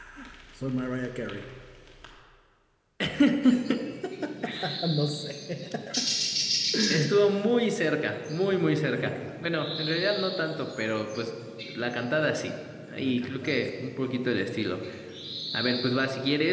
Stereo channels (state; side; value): identical; both; correlation 1.00